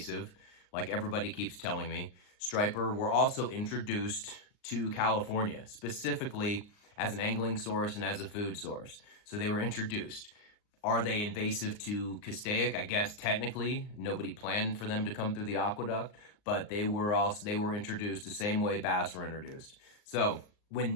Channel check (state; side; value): late; right; 39 ms